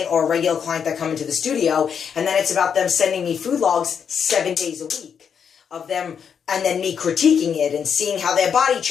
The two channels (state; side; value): quieter; right; 7.3 dB